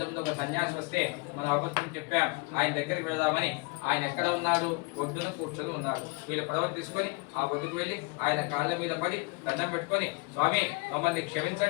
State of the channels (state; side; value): quieter; right; 28.9 dB